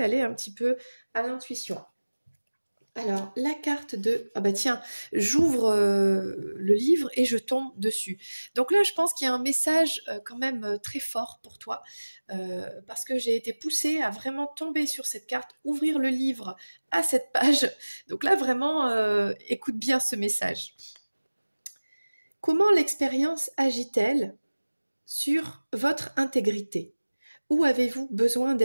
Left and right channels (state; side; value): inverted; both; correlation -1.00